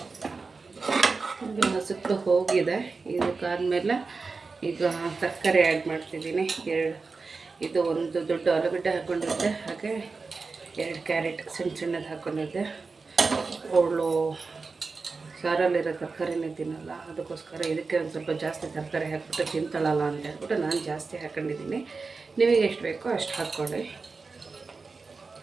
ಹಸಿಟ್ಟು ಹೋಗಿದೆ. ಇದಕ್ಕಾದಮೇಲೆ ಈಗ ತರಕಾರಿ ಆ್ಯಡ್ ಮಾಡ್ತಿದ್ದೀನಿ. ಇದು ಒಂದು ದೊಡ್ಡ ಆಲೂಗಡ್ಡೆ ಹಾಕ್ಕೊಂಡಿದ್ದೆ, ಹಾಗೆ 2 ಕ್ಯಾರೆಟ್ ಸಣ್ಣದು ಹಾಕ್ಕೊಂಡಿದ್ದೆ. ಅವಳು ಸಾರಲ್ಲಿರೋ ತರಕಾರಿನೇ ತಿನ್ನಲ್ಲ, ಅದಕ್ಕೋಸ್ಕರ ಇದಕ್ಕೆ ಒಂದು ಸ್ವಲ್ಪ ಜಾಸ್ತಿ ತರಕಾರಿ ಹಾಕ್ಬಿಟ್ಟು ತಿಂತಾಳಲ್ಲ ಅಂತ ಹೇಳ್ಬಿಟ್ಟು ನಾನು ಜಾಸ್ತಿ ಹಾಕ್ಕೊಂಡಿದ್ದೀನಿ. ನಿಮಗೆ ಎಷ್ಟು ಬೇಕೋ ಅಷ್ಟು ಹಾಕ್ಕೊಳ್ಳಿ.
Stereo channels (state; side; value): quieter; left; 4.3 dB